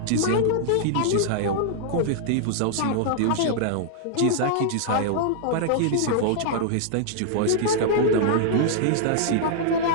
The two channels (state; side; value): different; both; correlation -0.01